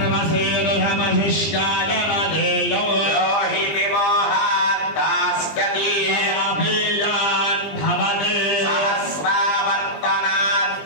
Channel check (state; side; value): late; right; 20 ms